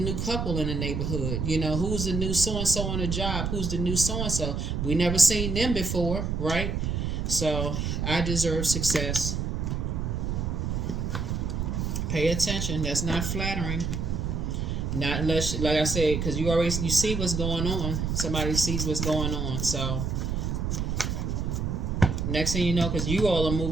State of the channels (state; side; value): noise; right; rumble, 1 dB below the sound